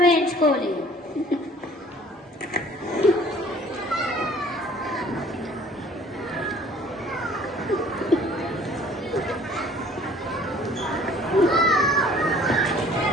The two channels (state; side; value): normal; both; correlation 0.53